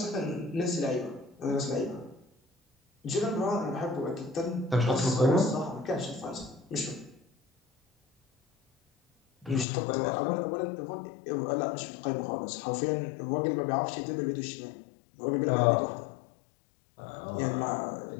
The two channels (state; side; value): drops out; right; at 9.7 s